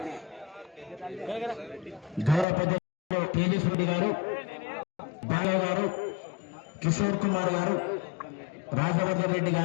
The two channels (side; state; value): right; drops out; at 2.5 s